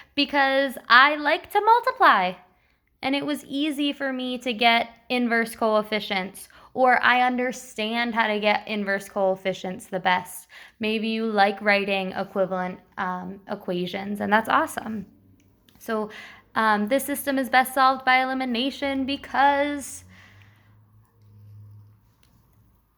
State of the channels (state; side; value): identical; both; correlation 1.00